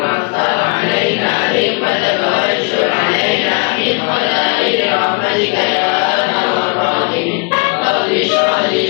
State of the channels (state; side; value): quieter; right; 32.4 dB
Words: ftah 'alaina hikmataka wa anshur 'alaina min khala'i rahmatika ya arhamar rahimin. Rabbi shrah